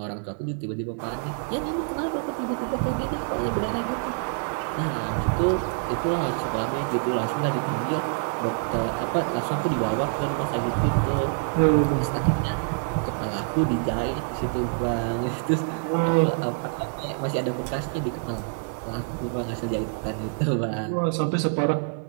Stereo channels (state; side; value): silent; left; 58 dB below the other